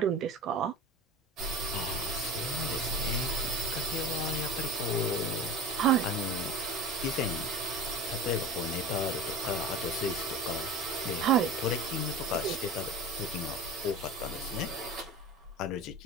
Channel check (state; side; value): normal; both; correlation 0.32